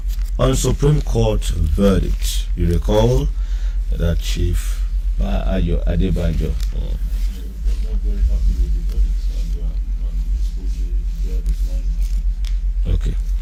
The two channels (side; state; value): both; identical; correlation 1.00